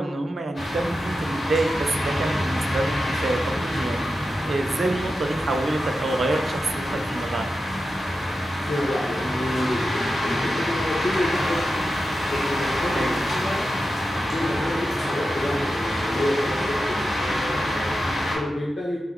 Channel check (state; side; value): normal; both; correlation 0.90